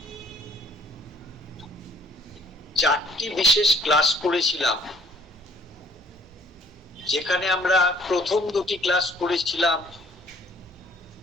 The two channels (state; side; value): normal; both; correlation 0.58